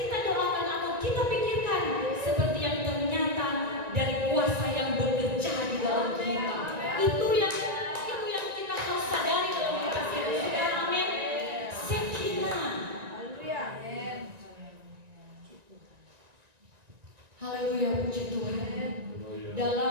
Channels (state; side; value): late; left; 1.9 ms